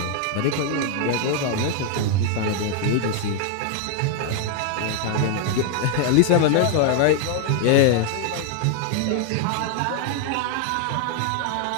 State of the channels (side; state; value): both; different; correlation 0.00